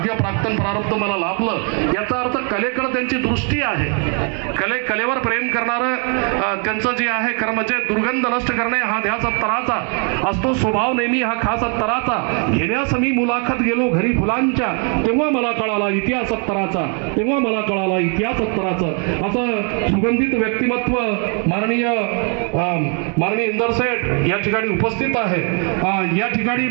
प्राक्तन प्रारब्ध मला लाभलं. याचा अर्थ कलेकडे त्यांची दृष्टी आहे. कलेवर प्रेम करणारं त्यांचं जे आहे खरं म्हणजे दुर्गंध नष्ट करणे हा ध्यास अत्तराचा असतो, स्वभाव नेहमी हा खास अत्तराचा. घेण्यास मी मुलाखत गेलो घरी फुलांच्या, तेव्हा मला कळाला इतिहास अत्तराचा, तेव्हा मला कळाला इतिहास अत्तराचं. असं सुगंधित व्यक्तिमत्व माननीय इंदर सेठ या ठिकाणी उपस्थित आहे. या ठिकाणी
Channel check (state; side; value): quieter; left; 38.7 dB